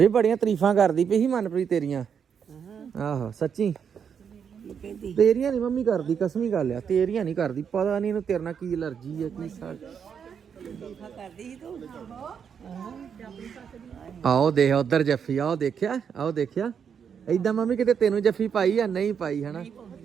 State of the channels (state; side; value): quieter; left; 7.3 dB